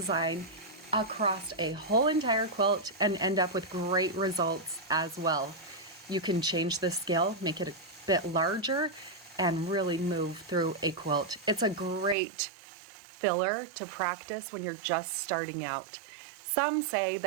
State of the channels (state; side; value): drops out; left; at 12.2 s